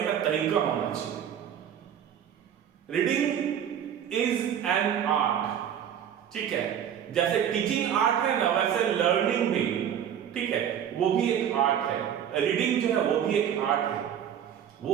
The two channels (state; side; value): quieter; left; 9.3 dB